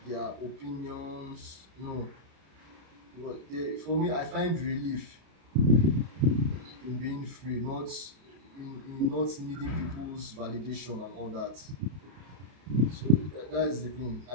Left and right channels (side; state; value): left; late; 32 ms